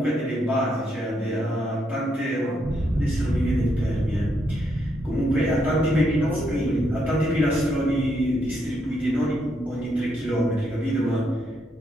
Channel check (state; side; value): normal; both; correlation 0.77